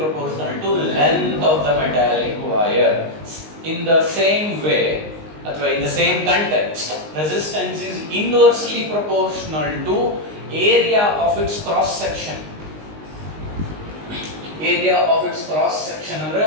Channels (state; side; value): late; left; 19 ms